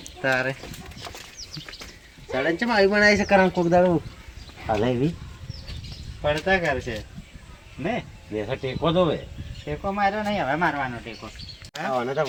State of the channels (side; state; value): both; identical; correlation 1.00